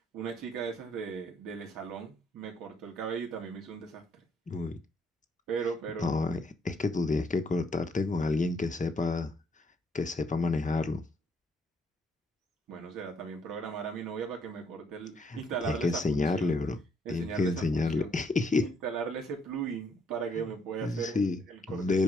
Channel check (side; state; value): both; normal; correlation 0.70